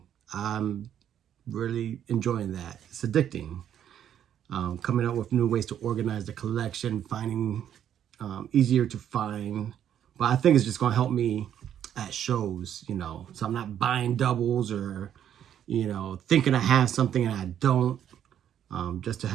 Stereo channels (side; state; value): left; quieter; 9.9 dB